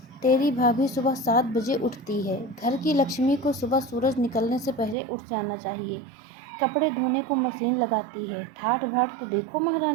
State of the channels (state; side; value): drops out; left; at 5.0 s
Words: तेरी भाभी सुबह 7 बजे उठती है। घर की लक्ष्मी को सुबह सूरज निकलने से पहले उठ जाना चाहिए। कपड़े धोने को मशीन लगाती है। ठाठ बाट तो देखो